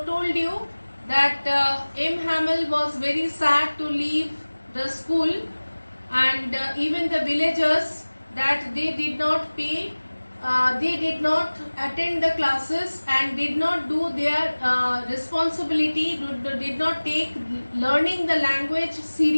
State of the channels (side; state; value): both; inverted; correlation -1.00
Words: you that M. Hamel was very sad to leave the school and even the villagers that they did not pay, they did not attend the classes and did not do their responsibility, did not take learning the language